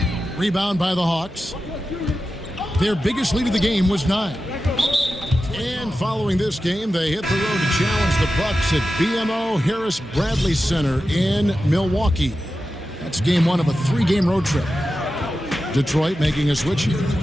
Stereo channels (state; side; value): normal; both; correlation 0.92